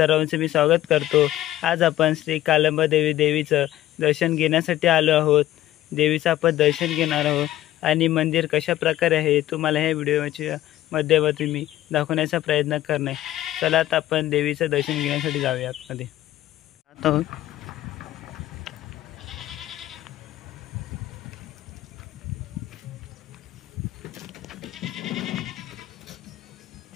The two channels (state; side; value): quieter; right; 14.2 dB